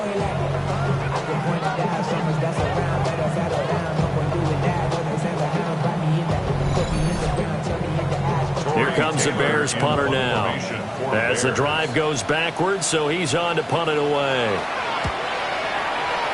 Here comes the Bears punter now. As the drive goes backwards, so he's on to punt it away.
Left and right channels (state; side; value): identical; both; correlation 1.00